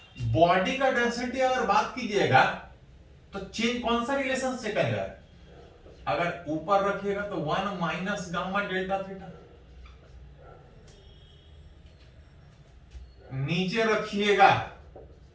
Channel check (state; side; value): identical; both; correlation 1.00